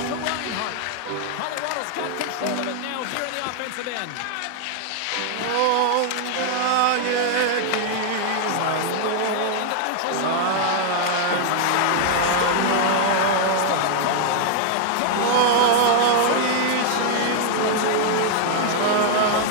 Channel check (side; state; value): both; different; correlation 0.00